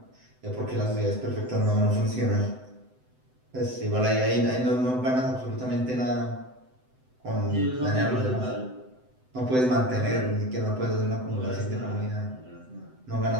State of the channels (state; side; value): late; left; 7.9 ms